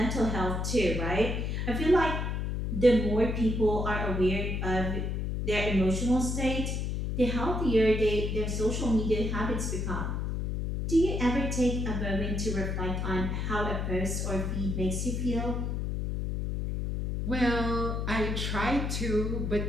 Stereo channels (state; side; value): noise; left; hum, 1 dB below the sound